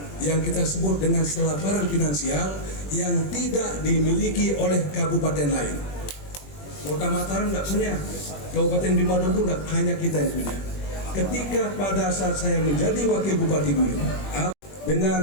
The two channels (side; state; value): right; late; 21 ms